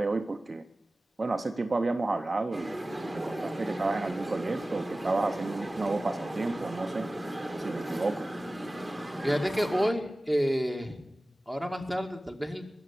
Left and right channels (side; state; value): both; normal; correlation 0.97